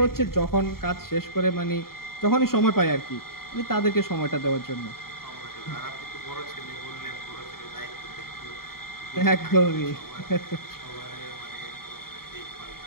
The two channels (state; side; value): late; right; 0.93 ms